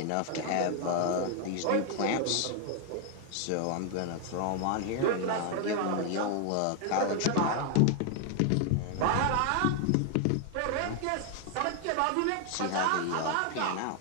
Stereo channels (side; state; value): both; different; correlation 0.00